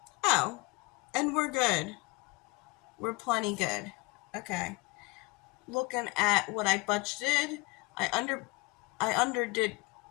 Oh, and we're good. We're plenty good. Okay. Looking at what I budgeted, I underdid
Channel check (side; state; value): right; quieter; 25.6 dB